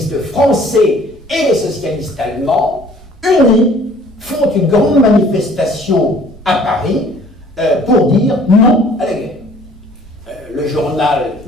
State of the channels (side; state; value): both; normal; correlation 0.54